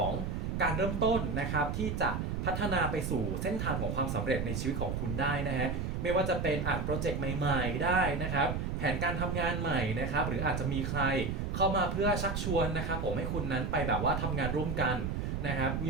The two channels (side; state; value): right; noise; rumble, 1 dB below the sound